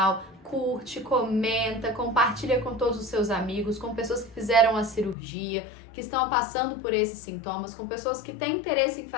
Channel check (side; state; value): right; drops out; at 5.2 s